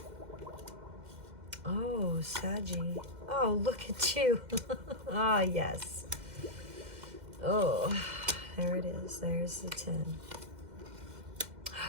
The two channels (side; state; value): left; late; 2.1 ms